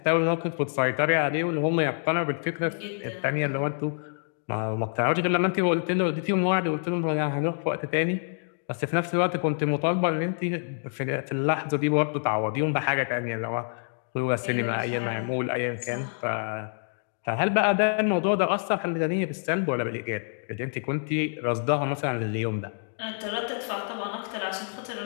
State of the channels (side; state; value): right; silent; digital silence